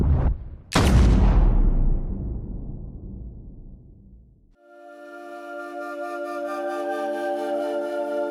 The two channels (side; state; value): both; identical; correlation 1.00